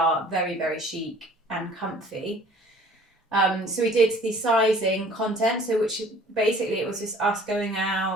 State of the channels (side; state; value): both; normal; correlation 0.52